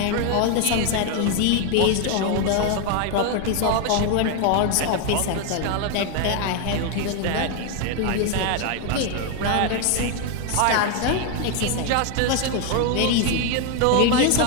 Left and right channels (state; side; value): different; both; correlation 0.01